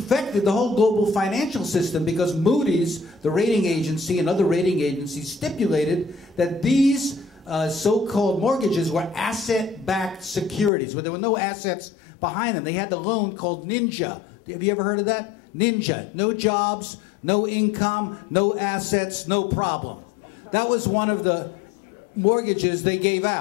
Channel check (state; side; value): drops out; right; at 10.7 s